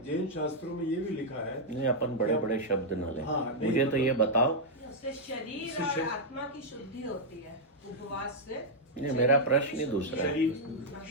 जैन शास्त्रों में ये भी लिखा है। नहीं, अपन बड़े बड़े शब्द न लें। हाँ, नहीं, मुझे तो ये बताओ। उससे शरीर और आत्मा की शुद्धि होती है उपवास से। नहीं, मेरा प्रश्न ही दूसरा है।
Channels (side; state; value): both; normal; correlation -0.05